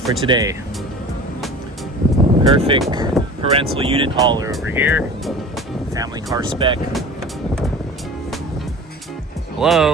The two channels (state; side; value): normal; both; correlation 0.39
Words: for today. Perfect parental unit hauler over here. Family car spec.